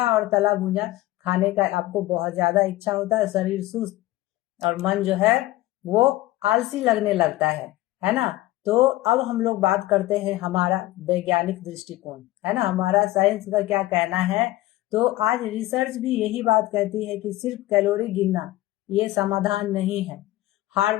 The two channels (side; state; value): right; quieter; 16.9 dB